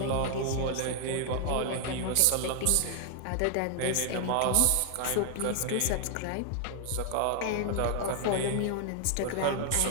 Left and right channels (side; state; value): both; different; correlation 0.00